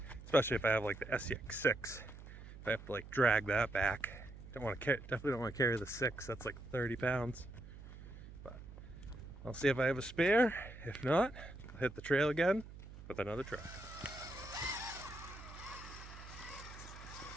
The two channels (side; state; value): right; noise; hum, 14 dB below the sound